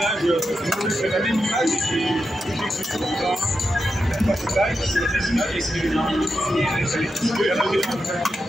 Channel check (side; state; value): both; normal; correlation 0.88